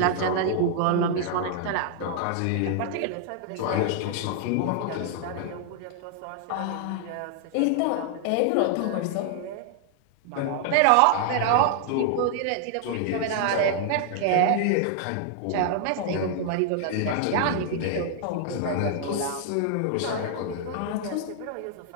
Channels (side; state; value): both; different; correlation 0.00